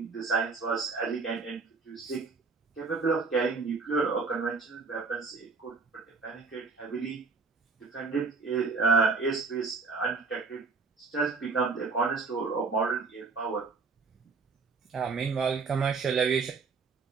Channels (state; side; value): quieter; left; 4.5 dB